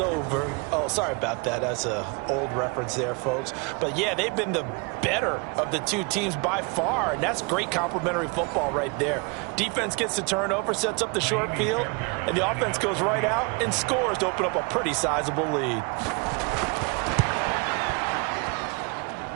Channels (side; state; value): left; quieter; 31.5 dB